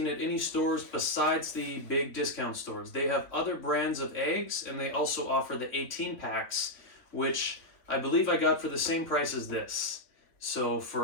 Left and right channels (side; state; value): right; late; 3.3 ms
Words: at any stores besides the big discount stores. They have other brands of eggs, and they also offer the 18 packs, which I believe I got for the same price as this. So